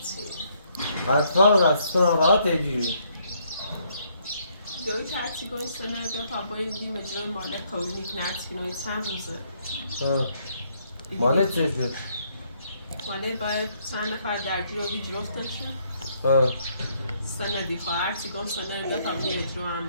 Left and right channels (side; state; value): both; inverted; correlation -0.70